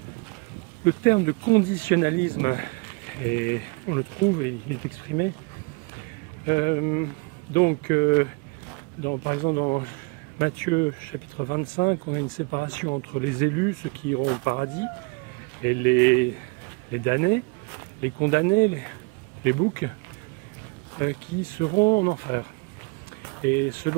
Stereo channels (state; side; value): quieter; left; 30.5 dB